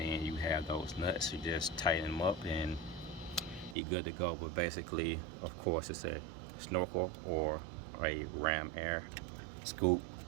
you have those nuts. You just tighten them up and you're good to go. But basically, of course, it's a Snorkel or a ram air scoop.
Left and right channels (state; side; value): drops out; left; at 3.8 s